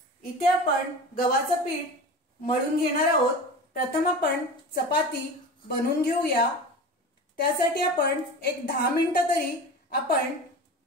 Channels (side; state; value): both; normal; correlation 0.32